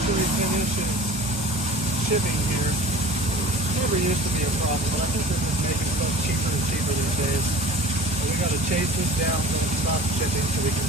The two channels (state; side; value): normal; both; correlation 0.42